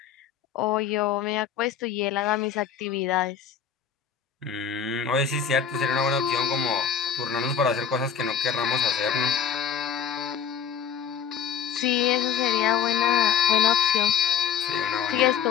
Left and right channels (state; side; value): quieter; right; 7.8 dB